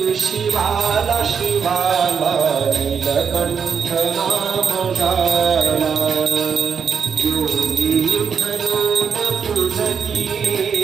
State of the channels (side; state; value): left; quieter; 6.8 dB